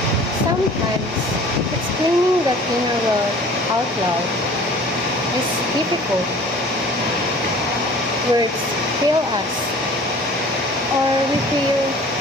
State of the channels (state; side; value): normal; both; correlation 0.47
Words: Sometimes, explaining that inner world out loud is difficult. Words fail us, or we feel